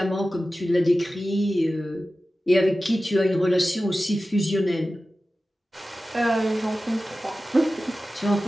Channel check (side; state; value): both; normal; correlation 0.95